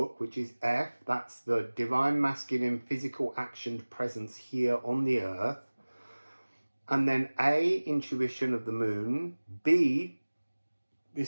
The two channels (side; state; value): both; inverted; correlation -1.00